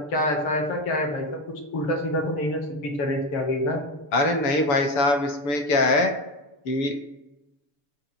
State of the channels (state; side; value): late; right; 6.9 ms